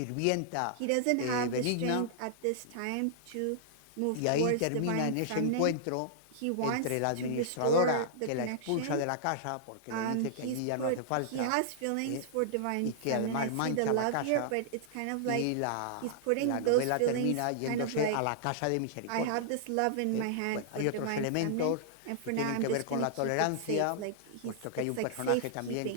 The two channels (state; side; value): different; both; correlation -0.01